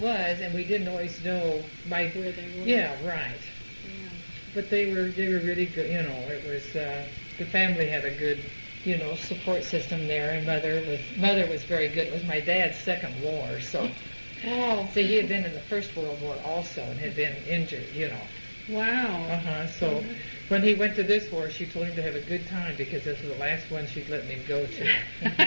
was, and we didn't always know where they were. Yeah, right. Yeah. But they were really good. You know, it was the family had a good, you know, support system there, and mother was very good. It was my dad's second war, so. Oh. So he had been in the First World War also, and had been injured. You know. Wow. So when he went to this war, she told him to have a good time because this was the last one she'd let him go to.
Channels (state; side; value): inverted; both; correlation -1.00